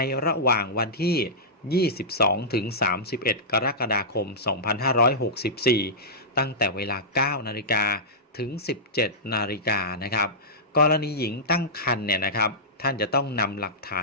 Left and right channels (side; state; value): both; normal; correlation -0.15